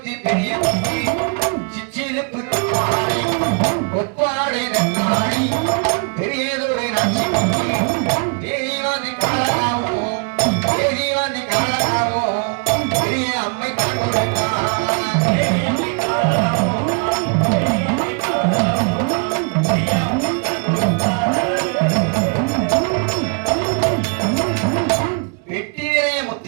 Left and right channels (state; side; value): quieter; left; 36.8 dB